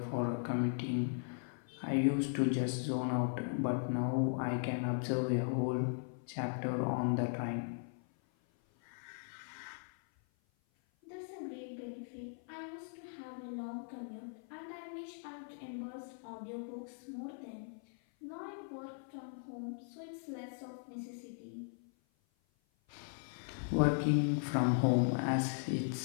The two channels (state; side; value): silent; right; 52 dB below the other